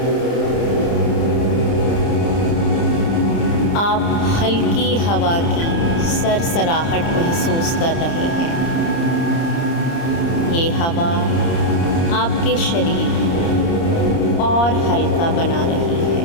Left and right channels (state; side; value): late; right; 30 ms